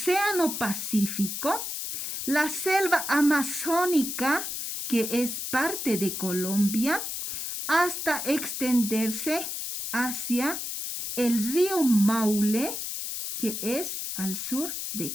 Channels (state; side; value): noise; left; hiss, 4 dB below the sound